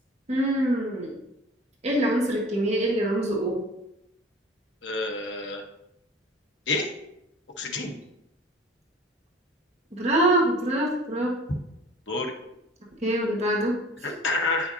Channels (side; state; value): both; normal; correlation 0.43